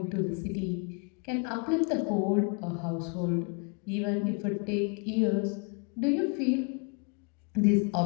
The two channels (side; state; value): right; quieter; 35.3 dB